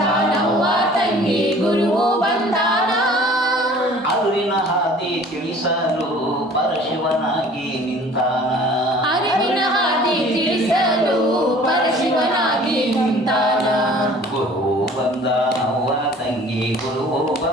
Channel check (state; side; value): normal; both; correlation 0.49